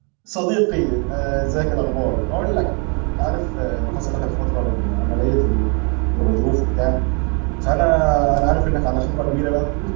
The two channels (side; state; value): left; quieter; 34.6 dB